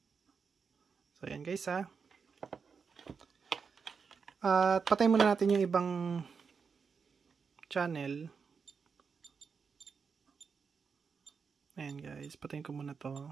So ayan guys At patay muna natin yung ibang channel. Ayan guys, patayin ko muna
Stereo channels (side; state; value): left; quieter; 5.7 dB